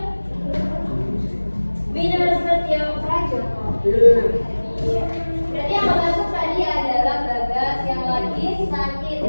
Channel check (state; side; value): inverted; both; correlation -1.00